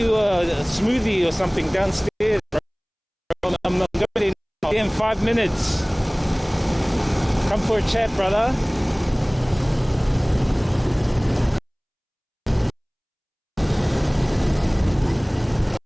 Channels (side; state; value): both; identical; correlation 1.00